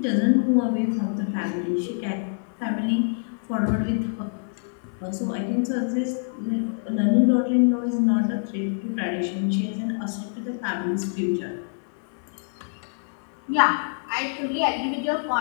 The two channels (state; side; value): silent; right; 61 dB below the other